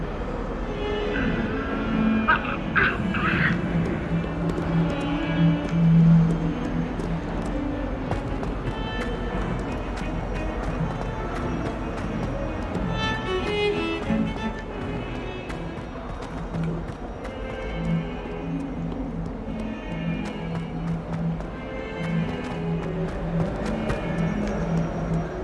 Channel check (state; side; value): identical; both; correlation 1.00